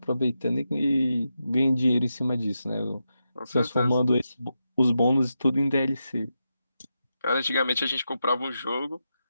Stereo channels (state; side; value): inverted; both; correlation -0.87